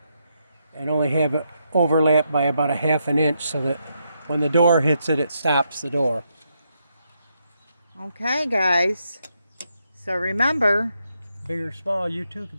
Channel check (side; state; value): both; inverted; correlation -0.80